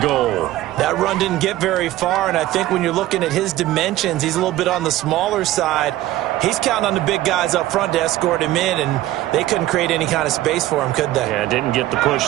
goal. That run didn't get very far, and I think when you're looking at his dimensions, he's a little bit on the smaller side. He's counting on the big guys up front to escort him in, and they couldn't create any kind of space for him, could they? Yeah, didn't get the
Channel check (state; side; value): quieter; left; 15.4 dB